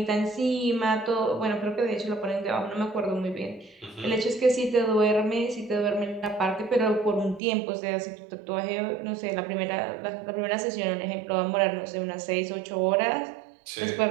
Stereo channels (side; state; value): left; drops out; at 7.4 s